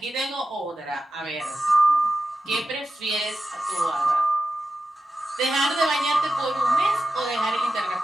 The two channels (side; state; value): both; normal; correlation 0.91